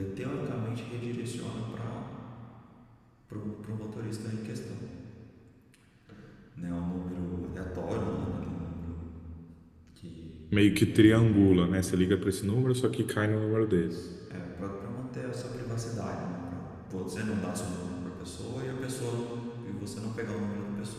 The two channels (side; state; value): both; identical; correlation 1.00